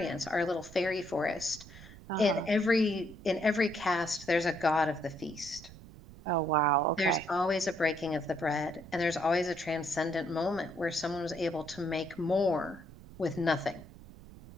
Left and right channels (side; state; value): right; noise; rumble, 18 dB below the sound